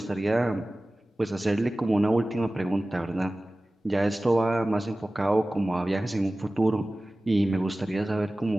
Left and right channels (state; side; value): normal; both; correlation 0.97